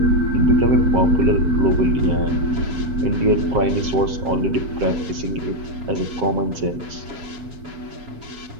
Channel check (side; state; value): left; late; 7.5 ms